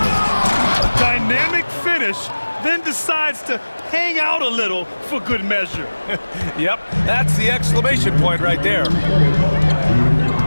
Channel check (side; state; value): both; inverted; correlation -1.00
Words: A dynamic finish, then decides to hang out a little for good measure. Yep, that's the exclamation point right there.